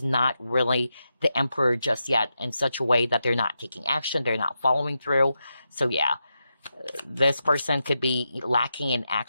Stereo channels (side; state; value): both; inverted; correlation -0.87